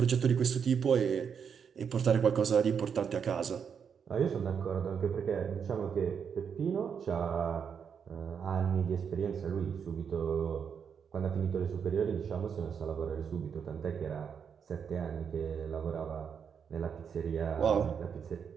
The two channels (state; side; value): quieter; left; 7.0 dB